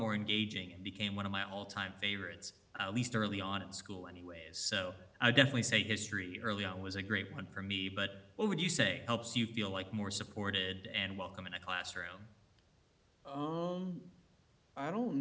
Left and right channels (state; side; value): identical; both; correlation 1.00